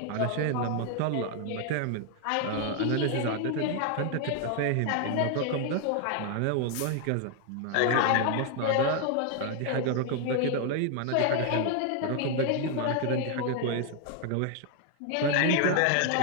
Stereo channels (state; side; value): different; both; correlation 0.00